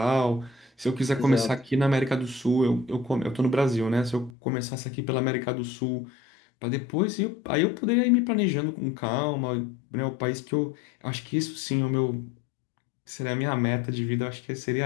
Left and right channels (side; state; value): right; drops out; at 4.3 s